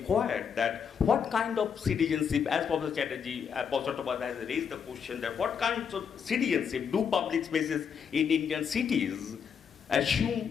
that what kind of citizenship, as Professor Chattopadhyay has raised the question that what kind of citizenship do public spaces in Indian cities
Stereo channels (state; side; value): quieter; right; 7.0 dB